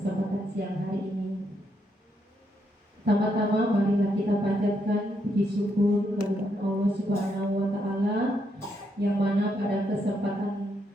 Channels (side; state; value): both; normal; correlation 0.77